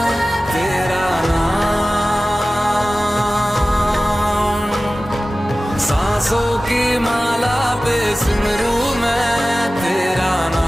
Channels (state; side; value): normal; both; correlation 0.96